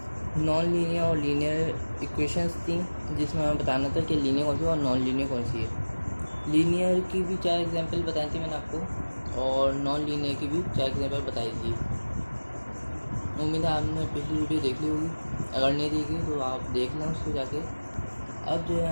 नॉन लीनियर और लीनियर इक्वेशंस थी जिसमें हमें बताना था कि लीनियर कौन सी है और नॉन लीनियर कौन सी है। लीनियर की भी 4 एग्जाम्पल बताई थी मैंने आपको और नॉन लीनियर की भी 4 एग्जाम्पल बताई थी। उम्मीद है आपने पिछली वीडियो देख ली होगी, अगर नहीं देखी तो आप देख लें उसको जाके। अब जो है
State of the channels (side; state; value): both; inverted; correlation -1.00